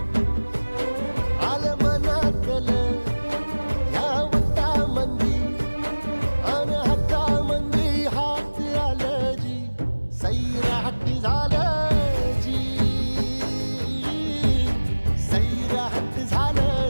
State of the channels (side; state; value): both; inverted; correlation -1.00